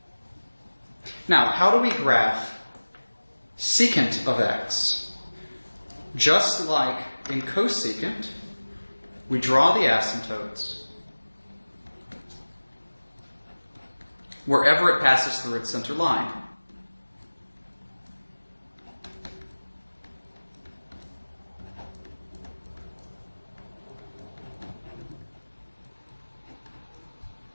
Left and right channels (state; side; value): inverted; both; correlation -1.00